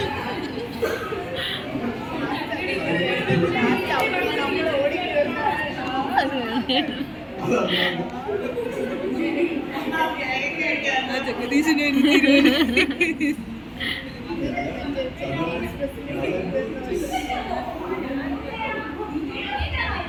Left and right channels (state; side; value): identical; both; correlation 1.00